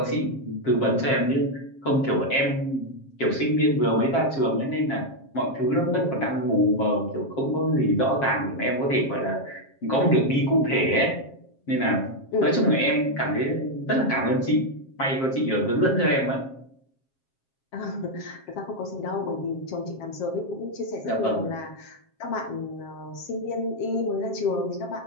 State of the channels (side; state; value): right; late; 7.5 ms